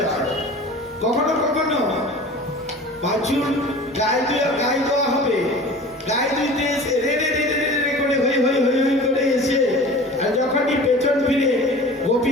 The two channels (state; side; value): normal; both; correlation 0.40